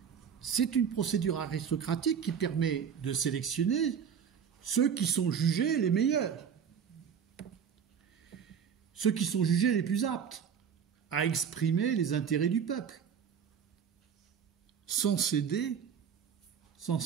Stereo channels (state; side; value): quieter; left; 7.5 dB